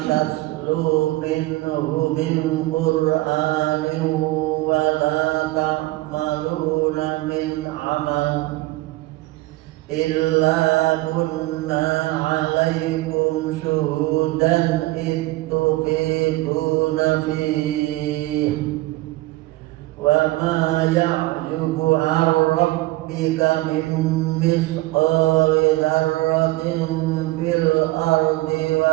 minhu min Qur'anin wa la ta'maluna min amal illa kunna 'alaikum syuhudan ittufiduna fihi wa ma ya'jubu 'an rabbika min misqali dzarratin fil ardi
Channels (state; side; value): quieter; left; 19.4 dB